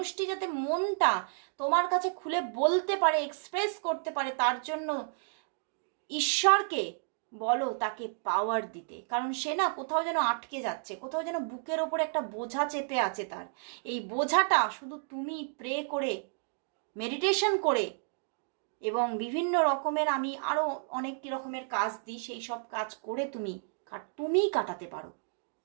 যাতে মনটা তোমার কাছে খুলে বলতে পারে, এক্সপ্রেস করতে পারে। তার জন্য ঈশ্বরকে বলো তাকে পাওয়ার দিতে, কারণ সে না কোথাও যেন আটকে যাচ্ছে, কোথাও যেন বুকের ওপর একটা বোঝা চেপে আছে তার। এই বোঝাটা শুধু তুমি প্রে করে, মেডিটেশন করে এবং বিভিন্ন রকমের আমি আরও অনেক রকমের কাজ দিই, সেই সব কাজ করে তুমিই কাটাতে পারো।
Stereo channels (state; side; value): silent; left; digital silence